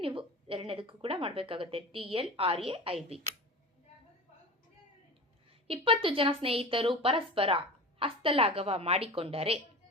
ನೀವು ಎರಡನೇದಕ್ಕೂ ಕೂಡ ಮಾಡಬೇಕಾಗುತ್ತೆ. TLRAIB. 20 ಜನ ಸ್ನೇಹಿತರು ಪರಸ್ಪರ ಹಸ್ತಲಾಘವ ಮಾಡಿಕೊಂಡರೆ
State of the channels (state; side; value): normal; both; correlation 0.33